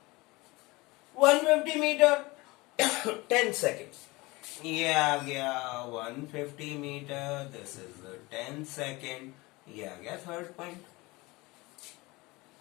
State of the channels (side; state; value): right; quieter; 22.8 dB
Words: 150 metre 10 second, ये आ गया 150 मीटर, दिस इज 10 सेकेंड, ये आ गया third point.